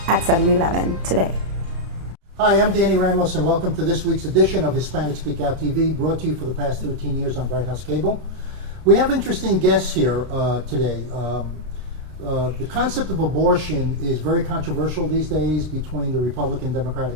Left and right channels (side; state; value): left; late; 32 ms